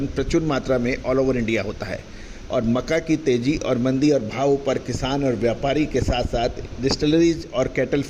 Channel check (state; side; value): identical; both; correlation 1.00